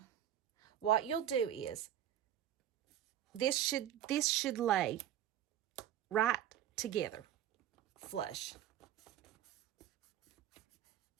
what you'll do is this should lay right together, flush.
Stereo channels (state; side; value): quieter; left; 11.1 dB